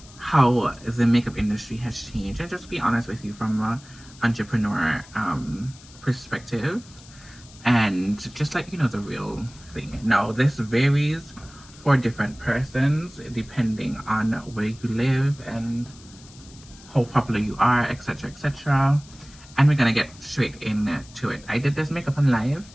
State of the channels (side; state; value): left; noise; hiss, 22 dB below the sound